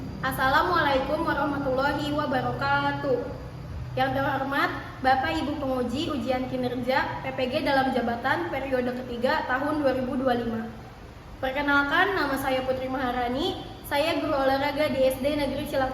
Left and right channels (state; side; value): identical; both; correlation 1.00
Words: Assalamualaikum warahmatullahi wabarakatuh. Yang terhormat Bapak Ibu Penguji Ujian Kinerja PPG dalam jabatan periode ketiga tahun 2025. Perkenalkan, nama saya Putri Maharani. Saya guru olahraga di SD Negeri